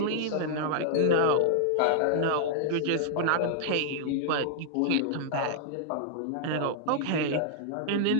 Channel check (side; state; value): both; different; correlation -0.01